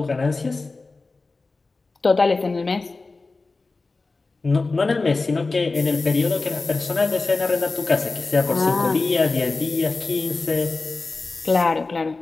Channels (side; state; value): right; quieter; 3.7 dB